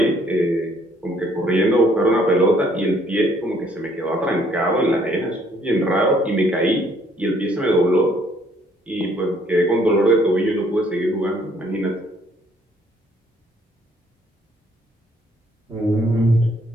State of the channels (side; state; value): both; normal; correlation 0.65